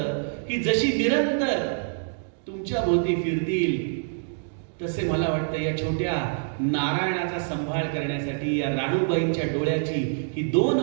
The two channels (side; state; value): left; silent; digital silence